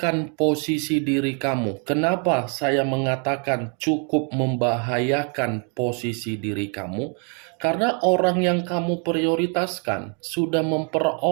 posisi diri kamu. Kenapa saya mengatakan cukup membahayakan posisi diri kamu? Karena orang yang kamu prioritaskan sudah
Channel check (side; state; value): left; quieter; 39.6 dB